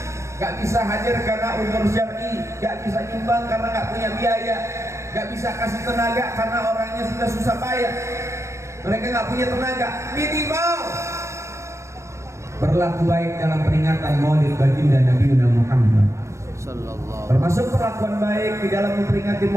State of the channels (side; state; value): left; late; 0.14 ms